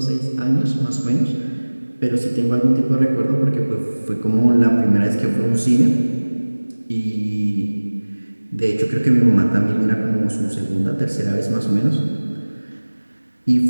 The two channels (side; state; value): both; inverted; correlation -1.00